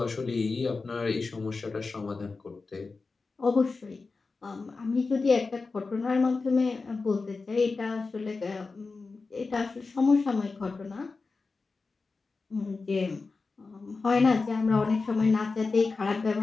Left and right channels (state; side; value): quieter; right; 4.1 dB